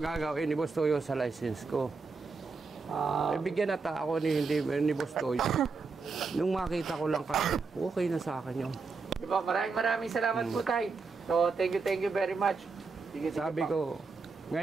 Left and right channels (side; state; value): left; quieter; 4.5 dB